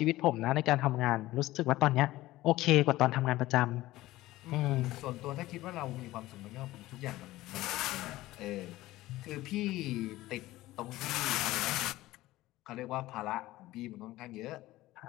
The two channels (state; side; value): quieter; right; 17.0 dB